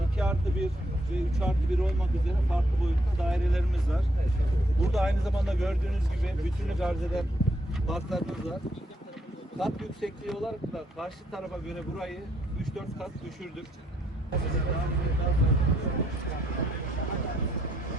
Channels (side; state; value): both; normal; correlation 0.74